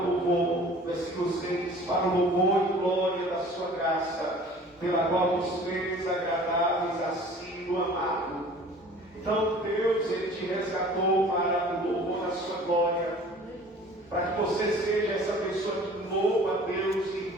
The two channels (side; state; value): both; normal; correlation 0.47